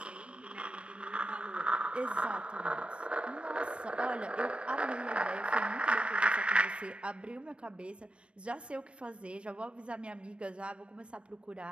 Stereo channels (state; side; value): late; left; 0.059 ms